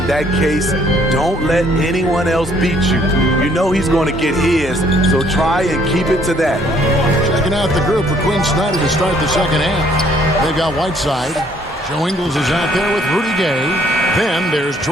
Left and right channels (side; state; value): both; normal; correlation 0.63